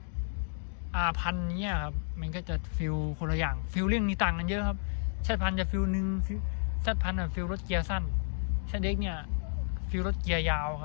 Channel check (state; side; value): silent; right; digital silence